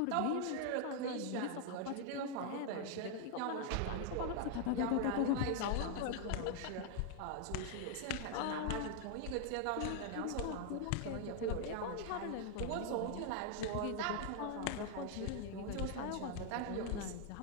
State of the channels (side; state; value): both; different; correlation 0.00